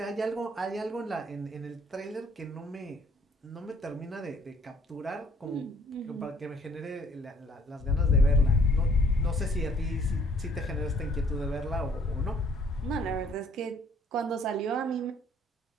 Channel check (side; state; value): both; normal; correlation 0.61